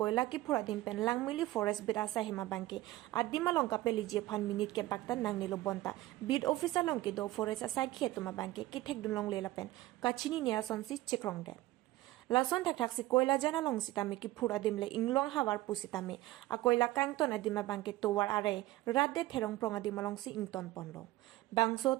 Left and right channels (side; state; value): left; quieter; 17.2 dB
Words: kephur adim pen langmili forest berasa hema bangke. Adima long kapeli je fan minute ke bakta nang nilo bonta. Bid officer long ke do forest aside khetuma bangke ki thek dun long lela pen. Kachini nia sonsi chekrong de. Lason tak tak si koila jana long sitame kephur adim le inglong hawar pusitame. A koila kangton adima bangke towar are radde therong prong adim long si ington ponlo. Bangso